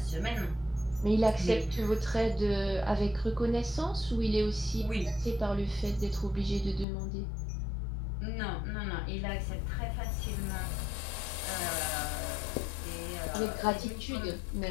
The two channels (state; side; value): drops out; right; at 6.9 s